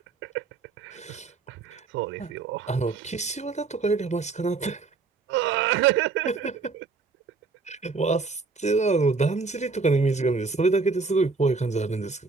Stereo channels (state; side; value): quieter; left; 4.3 dB